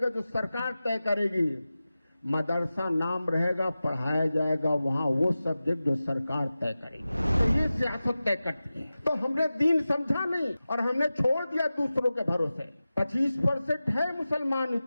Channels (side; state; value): both; inverted; correlation -0.95